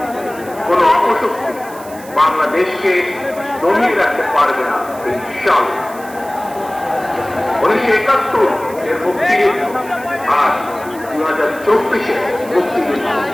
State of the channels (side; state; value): right; noise; hiss, 19 dB below the sound